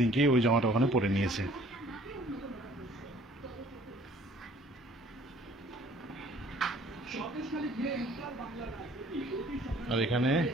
ওই জামাটা ওখানে পরে নিয়েছে। আর এখানে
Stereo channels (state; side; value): normal; both; correlation 0.55